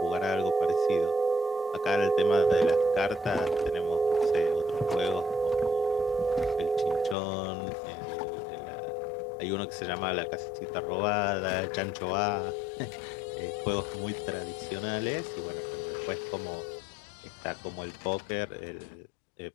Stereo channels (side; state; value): right; drops out; at 7.2 s